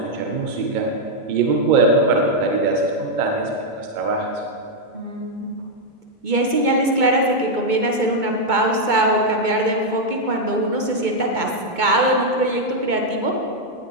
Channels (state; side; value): late; left; 2.2 ms